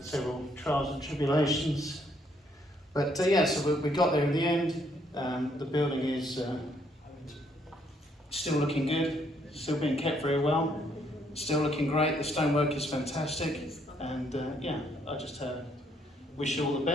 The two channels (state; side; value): normal; both; correlation 0.70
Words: several trials and tribulations. But yeah, so we got there in the end. The building is still looking good, still being kept very well, still looking great. The stonework is fantastic. And yeah, I just wish you all the